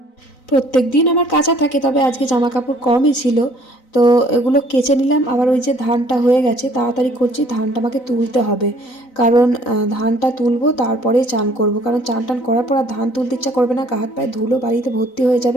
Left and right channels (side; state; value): right; late; 4.0 ms